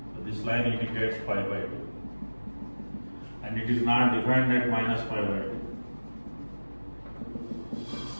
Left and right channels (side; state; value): both; inverted; correlation -1.00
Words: So this line indicates pi by 2. And it is not defined at minus pi by 2.